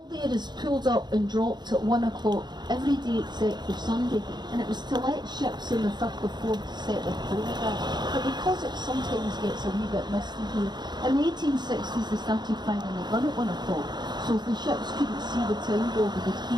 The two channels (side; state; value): left; late; 0.21 ms